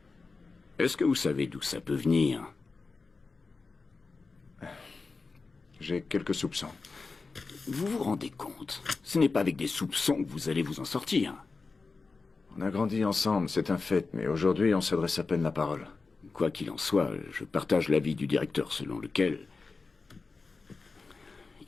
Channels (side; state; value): right; quieter; 4.2 dB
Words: Est-ce que vous savez d'où ça peut venir? J'ai quelques soupçons. Vous vous rendez compte? Ce n'est pas avec des soupçons que vous allez vous en sortir. On a grandi ensemble, c'est un fait, mais aujourd'hui, on s'adresse à peine la parole. Quoi qu'il en soit, je partage l'avis du directeur selon lequel